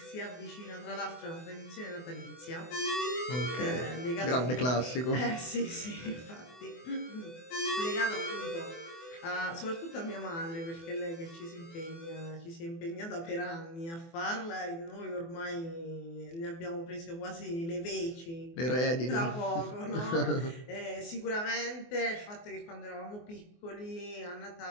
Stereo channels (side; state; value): right; late; 24 ms